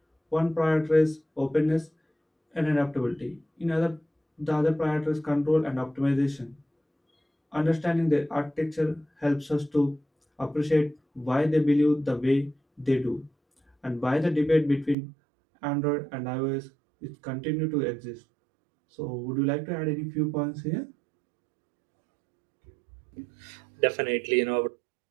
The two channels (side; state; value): left; drops out; at 15.0 s